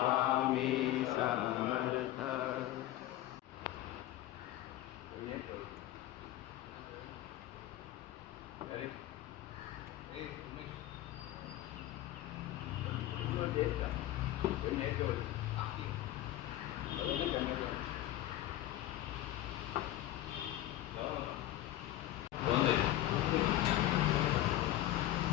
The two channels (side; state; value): right; quieter; 14.4 dB